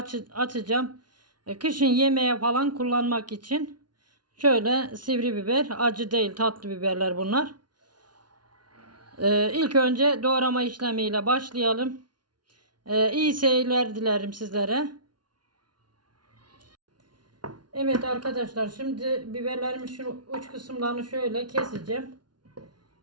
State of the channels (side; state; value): left; late; 0.70 ms